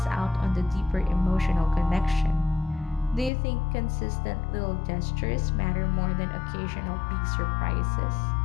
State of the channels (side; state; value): right; drops out; at 3.3 s